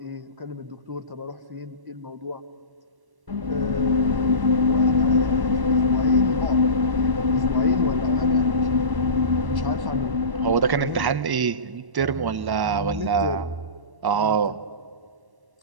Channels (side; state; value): left; late; 1.1 ms